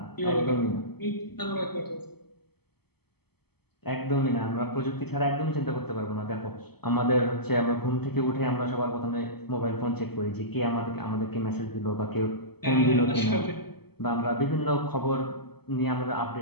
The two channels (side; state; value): right; late; 0.97 ms